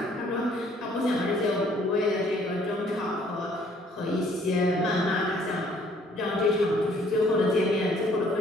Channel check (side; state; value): both; normal; correlation 0.61